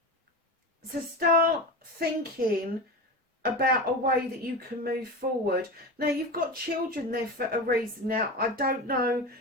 So start thinking about a way that you can move forward. Now, you've got children there for a reason. Now, I don't know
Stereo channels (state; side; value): normal; both; correlation 0.25